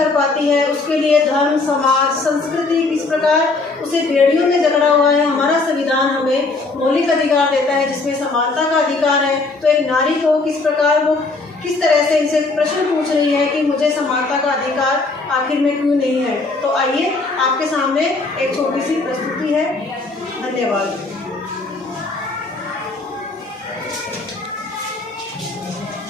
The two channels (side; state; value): right; quieter; 3.6 dB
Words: पाती है, उसके लिए धर्म, समाज, संस्कृति किस प्रकार उसे बेड़ियों में जकड़ा हुआ है। हमारा संविधान हमें मौलिक अधिकार देता है जिसमें समानता का अधिकार है। तो एक नारी को किस प्रकार वो किस तरह से इनसे प्रश्न पूछ रही है कि मुझे समानता का अधिकार आखिर में क्यों नहीं है। तो आइए आपके सामने एक छोटी सी प्रस्तुति है। धन्यवाद।